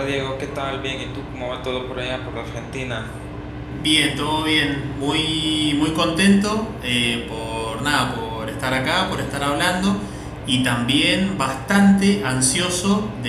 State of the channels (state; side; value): identical; both; correlation 1.00